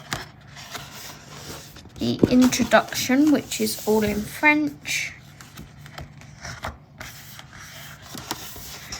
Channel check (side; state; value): both; identical; correlation 1.00